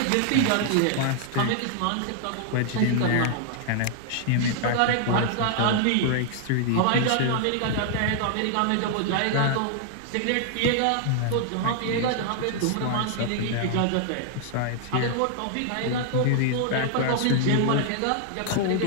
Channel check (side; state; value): both; different; correlation 0.00